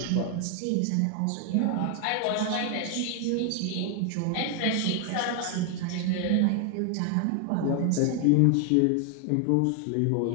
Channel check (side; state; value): both; different; correlation 0.00